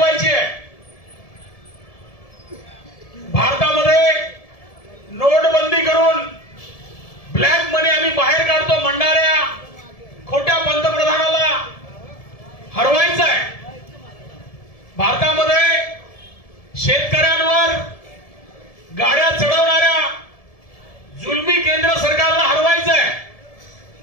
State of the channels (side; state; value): right; late; 1.7 ms